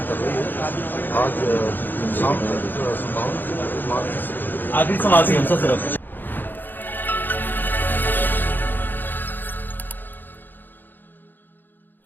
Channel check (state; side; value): late; right; 0.091 ms